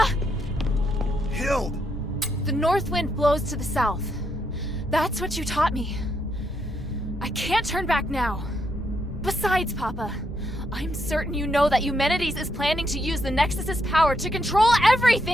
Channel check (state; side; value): normal; both; correlation 0.78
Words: Hild! The north wind blows to the south. That's what you taught me. I can't turn back now. Besides, Papa, I'm certain you know that Eumenides is planning to use the Nexus's power to control